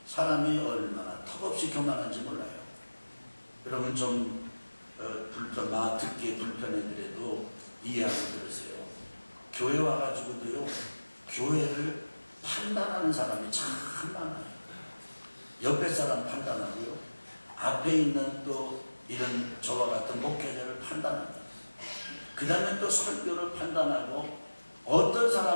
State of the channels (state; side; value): inverted; both; correlation -1.00